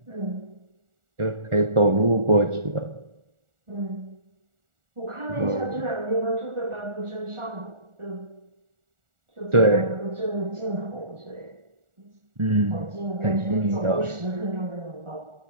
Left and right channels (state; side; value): late; left; 1.4 ms